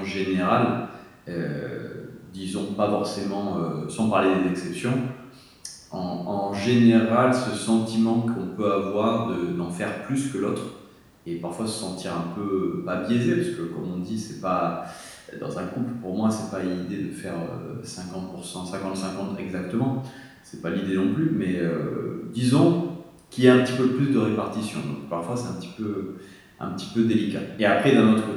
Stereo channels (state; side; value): identical; both; correlation 1.00